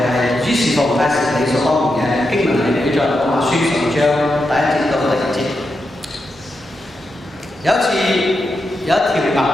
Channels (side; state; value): both; normal; correlation 0.86